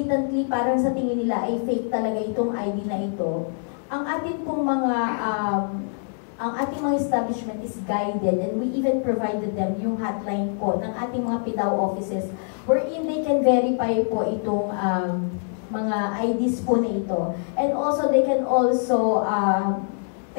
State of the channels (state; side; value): silent; right; digital silence